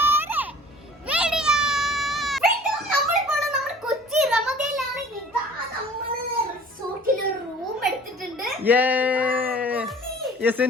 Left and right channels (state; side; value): normal; both; correlation 0.48